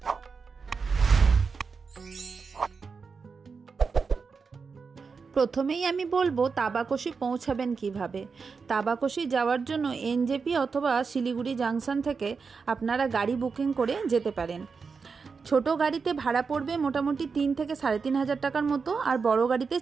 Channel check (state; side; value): quieter; left; 5.1 dB